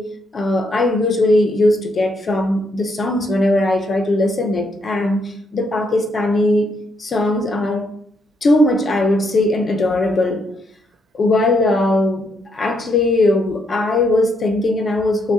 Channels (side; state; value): both; normal; correlation 0.75